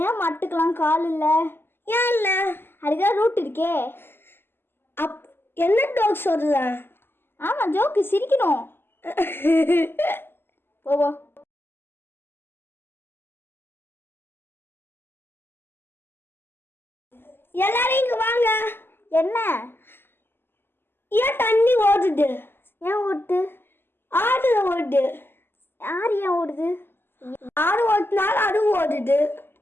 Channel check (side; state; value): right; late; 0.11 ms